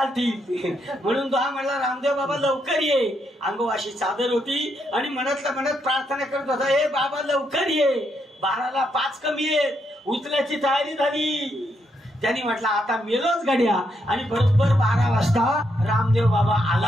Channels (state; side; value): normal; both; correlation 0.78